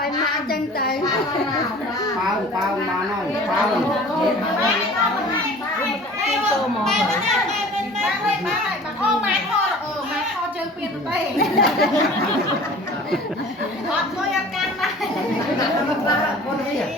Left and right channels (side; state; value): both; normal; correlation 0.44